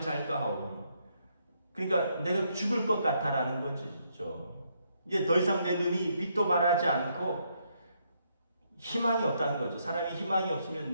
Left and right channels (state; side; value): inverted; both; correlation -0.75